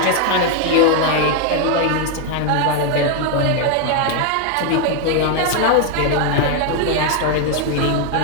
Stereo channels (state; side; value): different; both; correlation 0.01